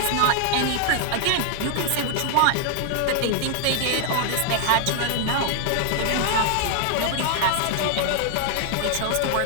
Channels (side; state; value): both; different; correlation 0.00